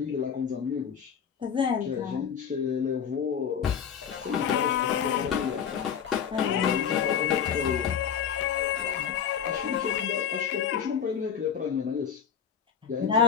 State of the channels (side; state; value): right; quieter; 7.7 dB